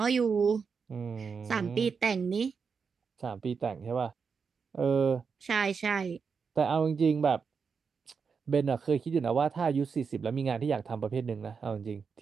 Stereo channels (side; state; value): left; quieter; 5.7 dB